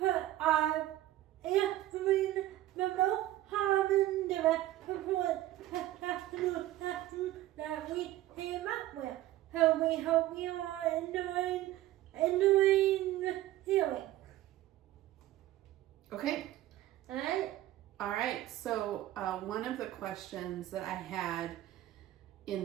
answering the most common direct support that we came up with. So we hope you are enjoying the healing. Okay. Alright? Alright, so one of the questions that I had in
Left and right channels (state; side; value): quieter; left; 14.8 dB